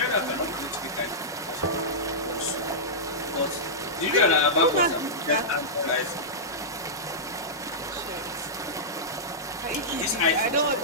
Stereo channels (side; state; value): both; normal; correlation -0.14